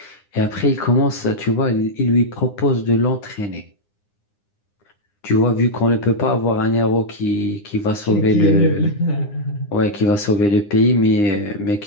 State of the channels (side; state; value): right; late; 9.8 ms